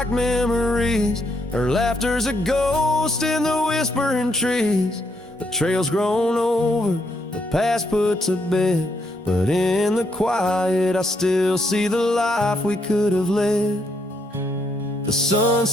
memories. Her laughter's a ghost in the whispering trees. The trail's grown over, the past put to bed, but in the quiet I still see the life we could have led. The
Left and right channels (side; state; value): both; normal; correlation 0.75